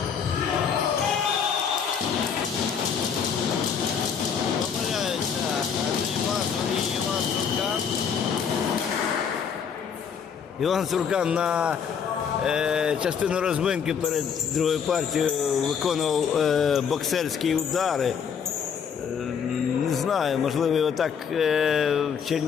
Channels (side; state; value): right; quieter; 7.1 dB